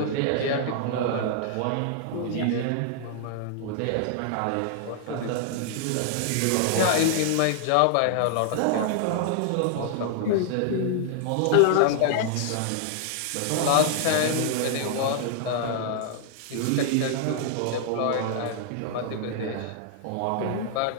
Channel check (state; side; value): different; both; correlation 0.00